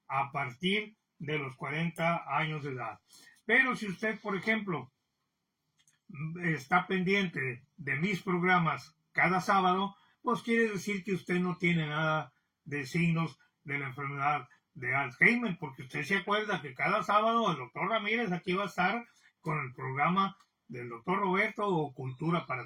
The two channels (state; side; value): identical; both; correlation 1.00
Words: a partir de los 40 años de edad. Pero si usted, por ejemplo, está pendiente de mis programas cada sábado, pues quiere decir que usted no tiene nada de signos de la enfermedad de Alzheimer, porque usted se acuerda que cada sábado el doctor Ramírez aquí va a estar con el programa del doctor Roberto o Cultura